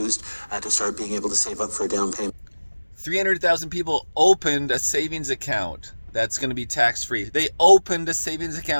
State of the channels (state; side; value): inverted; both; correlation -1.00